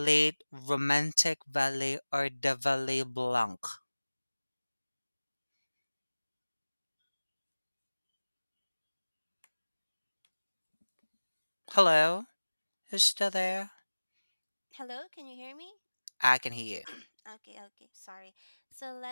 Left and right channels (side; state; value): both; inverted; correlation -1.00